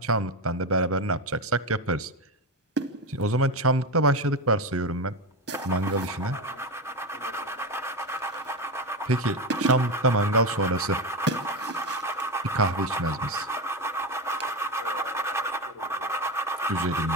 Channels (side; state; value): both; normal; correlation 0.16